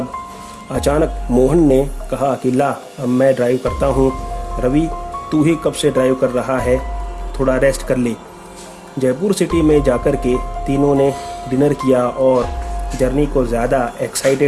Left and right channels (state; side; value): identical; both; correlation 1.00